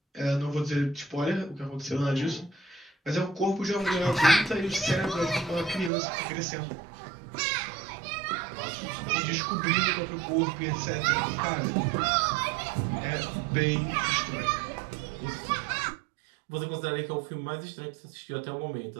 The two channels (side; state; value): left; drops out; at 5.9 s